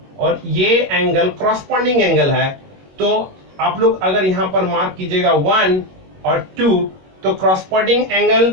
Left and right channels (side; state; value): left; late; 21 ms